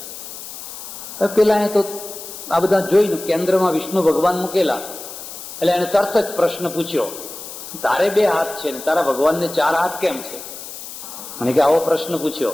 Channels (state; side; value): noise; left; hiss, 12 dB below the sound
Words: પેલા એ તો આ બધા જોઈને કેન્દ્રમાં વિષ્ણુ ભગવાન મૂકેલા એટલે એને તરત જ પ્રશ્ન પૂછ્યો, તારે 2 હાથ છે ને તારા ભગવાનને 4 હાથ કેમ છે? મને કે આવો પ્રશ્ન પૂછ્યો.